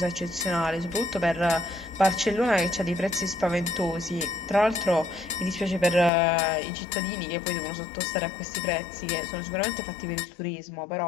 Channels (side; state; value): right; drops out; at 6.1 s